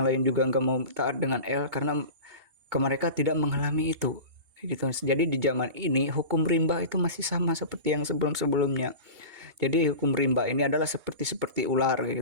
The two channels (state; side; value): late; left; 2.7 ms